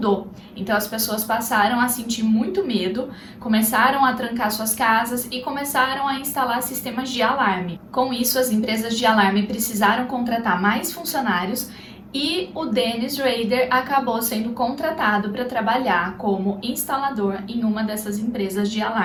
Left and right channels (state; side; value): identical; both; correlation 1.00